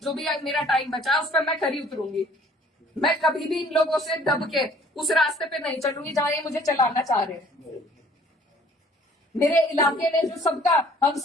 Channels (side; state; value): both; normal; correlation 0.56